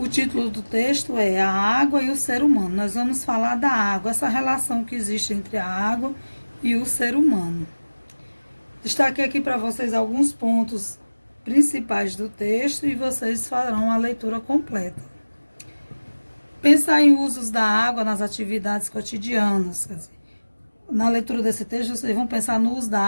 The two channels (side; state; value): both; inverted; correlation -1.00